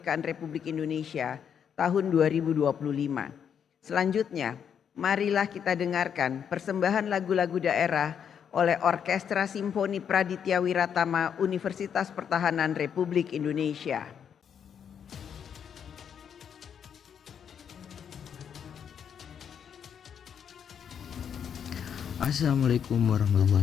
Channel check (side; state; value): right; quieter; 7.9 dB